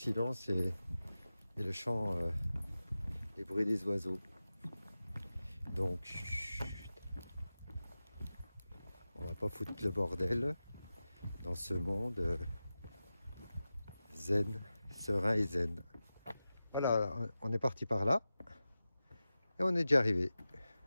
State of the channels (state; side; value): inverted; both; correlation -0.94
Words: et le chant, les bruits des oiseaux. Donc, chut, on va pas foutre le bordel dans ce monde zen, serein et zen. Voilà, on est parti par là et on est déjà arrivé.